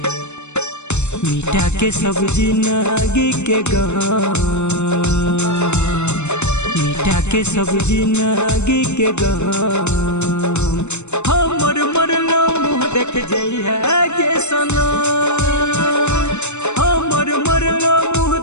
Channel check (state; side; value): late; right; 0.82 ms